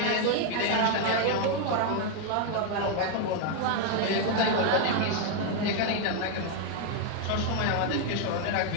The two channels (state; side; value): different; both; correlation 0.01